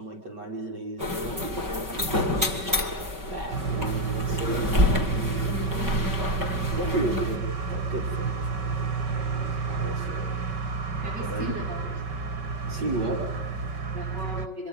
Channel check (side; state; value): left; late; 5.3 ms